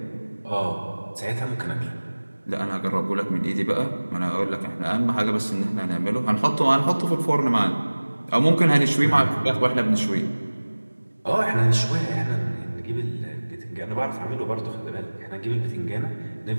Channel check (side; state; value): both; inverted; correlation -1.00